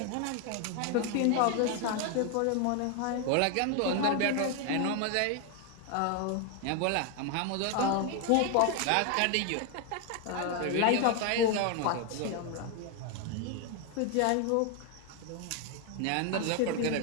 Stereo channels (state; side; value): different; both; correlation 0.01